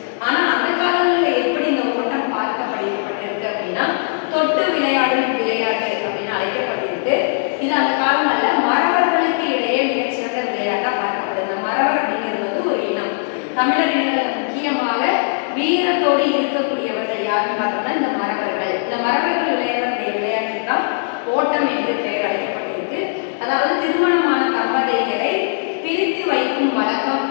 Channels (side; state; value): right; silent; digital silence